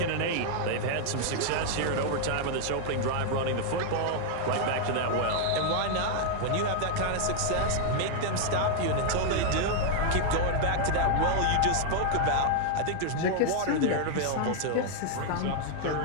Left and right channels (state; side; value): different; both; correlation 0.00